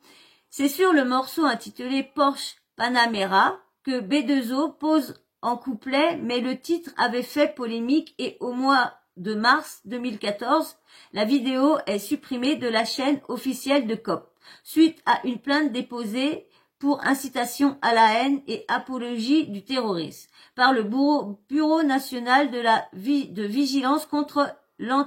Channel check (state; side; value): identical; both; correlation 1.00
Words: C'est sur le morceau intitulé Porsche Panamera que B2O pose en couplet, mais le titre avait fait polémique et au mois de mars 2014, la vidéo est supprimée de la chaîne officielle de COP, suite à une plainte déposée pour incitation à la haine et apologie du terrorisme par le Bureau national de vigilance contre